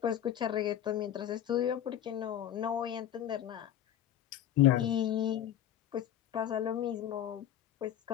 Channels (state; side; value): quieter; right; 11.0 dB